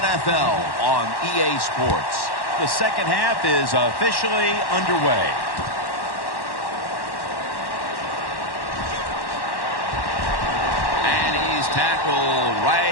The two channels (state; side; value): late; right; 1.1 ms